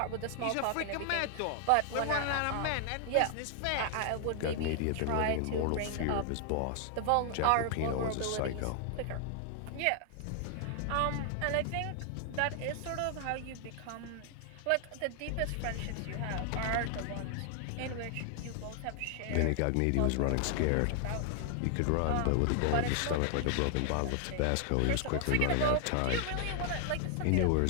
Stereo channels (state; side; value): different; both; correlation 0.00